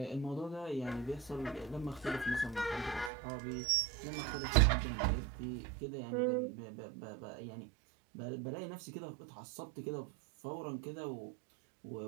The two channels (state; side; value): drops out; left; at 3.1 s